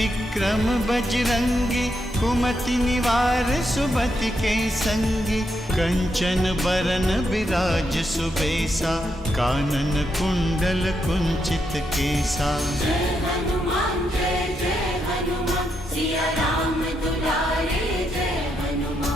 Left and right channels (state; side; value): normal; both; correlation 0.81